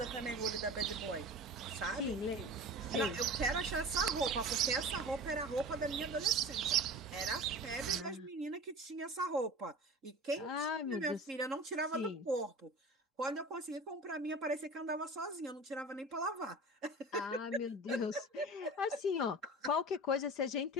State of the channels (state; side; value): normal; both; correlation 0.35